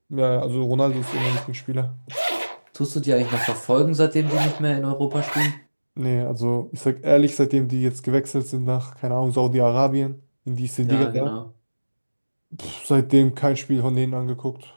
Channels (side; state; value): both; inverted; correlation -1.00